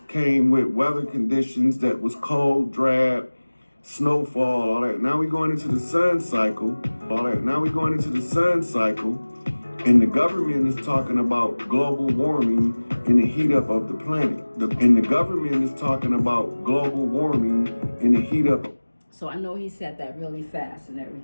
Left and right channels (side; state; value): both; inverted; correlation -1.00